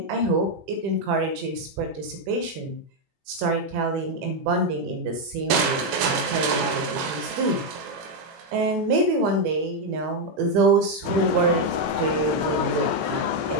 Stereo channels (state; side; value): late; left; 21 ms